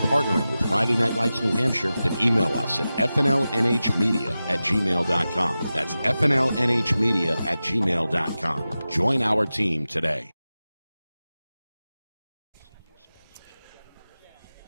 partnering with Friday Night Lights New Hampshire, then email us at fnlnhmedia@gmail.com. That's fnlnhmedia@gmail.com. Join our team today.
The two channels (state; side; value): inverted; both; correlation -0.94